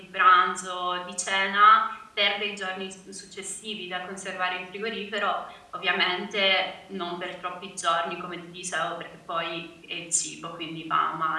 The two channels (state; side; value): identical; both; correlation 1.00